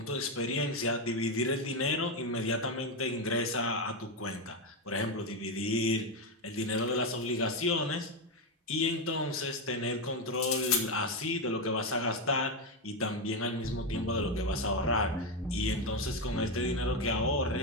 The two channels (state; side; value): normal; both; correlation 0.09